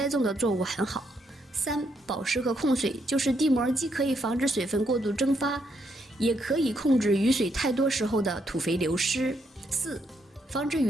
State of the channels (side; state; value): both; normal; correlation 0.76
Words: 种的作物很好。3. 保湿和控水，就是地膜既可以防止水分过度蒸发，也可以控制雨水太多时候的土肥流失。4. 防止